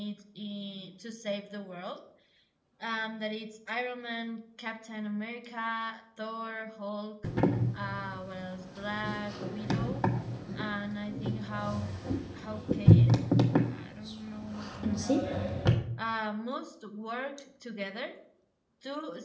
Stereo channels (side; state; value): both; identical; correlation 1.00